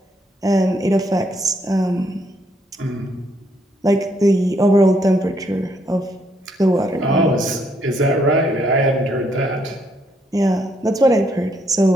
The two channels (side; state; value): both; normal; correlation 0.73